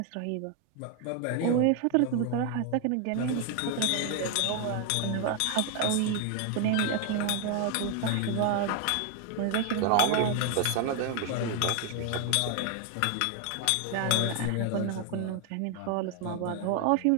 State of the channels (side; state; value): both; different; correlation 0.01